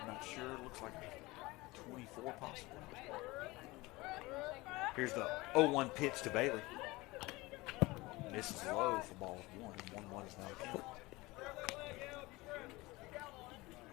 not sure. Looks like a 24 possibly. Here's the 0-1 pitch to Bailey. Misses low for ball 1. 1-1 is now the count.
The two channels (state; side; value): quieter; right; 21.6 dB